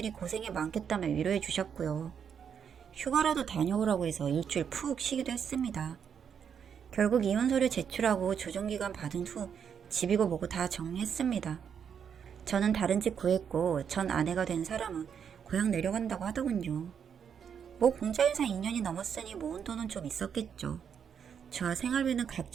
고생이 많겠다며 위로해 주셨고요. 휴가라도 다녀오라고 해서 일주일 푹 쉬기도 했습니다. 결국 이혼서류 제출하고 조정기간 받은 후 집이고 뭐고 다 정리했습니다. 저는 다른 집 구했고 전 아내가 된 사람은 고향 내려간다고 하더군요. 뭐 공자인사 2년이 넘었으니 모은 돈은 좀 있었겠죠. 저와 생활비는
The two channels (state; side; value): quieter; left; 7.6 dB